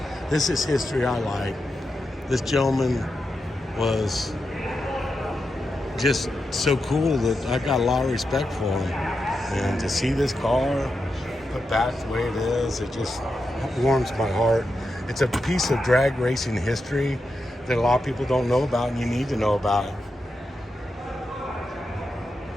This is history I like. This gentleman was just so cool that I got a lot of respect for him. And to see this car put back the way it is, it just warms my heart. It's a piece of drag racing history that a lot of people don't know about, and you need to know about it.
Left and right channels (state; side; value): normal; both; correlation 0.88